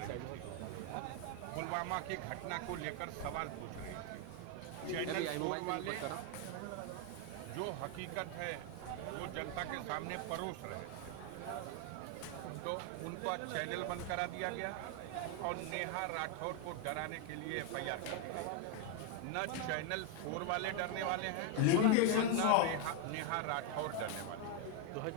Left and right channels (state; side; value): different; both; correlation 0.01